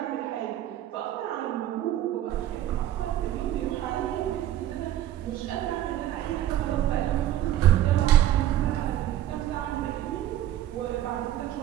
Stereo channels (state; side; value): quieter; left; 12.6 dB